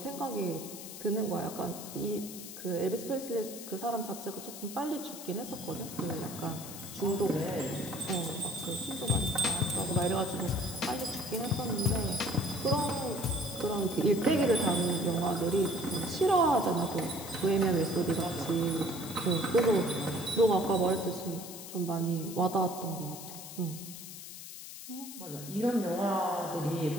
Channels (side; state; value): left; noise; hiss, 11 dB below the sound